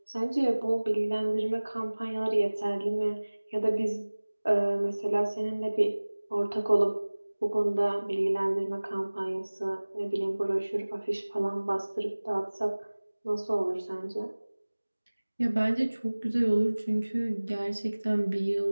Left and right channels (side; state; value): both; inverted; correlation -1.00